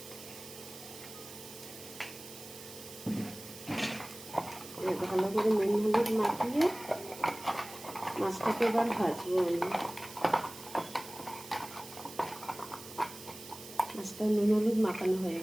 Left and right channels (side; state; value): right; noise; hiss, 15 dB below the sound